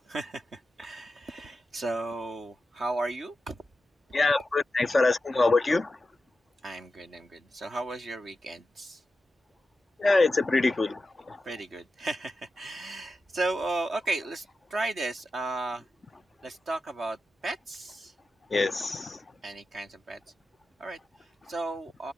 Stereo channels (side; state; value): both; normal; correlation 0.91